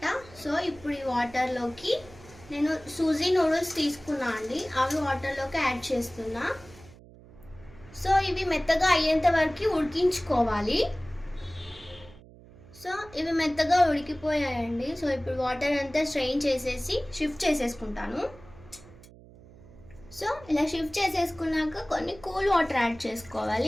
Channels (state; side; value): noise; right; hum, 22 dB below the sound